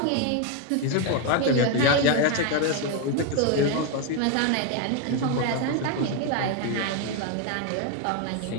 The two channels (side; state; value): both; different; correlation 0.01